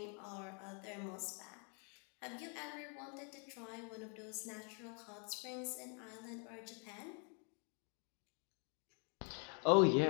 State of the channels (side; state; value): right; quieter; 39.2 dB